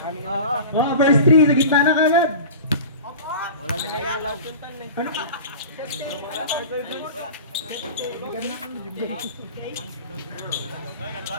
Oh, verse 3. Sa gitna na kagad. Wala na yalaw. Ano ka?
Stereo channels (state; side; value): inverted; both; correlation -0.35